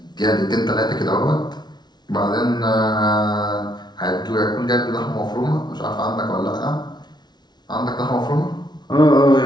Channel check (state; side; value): late; right; 0.20 ms